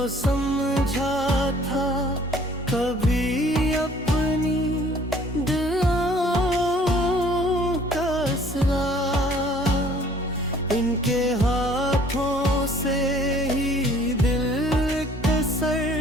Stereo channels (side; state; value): both; normal; correlation 0.56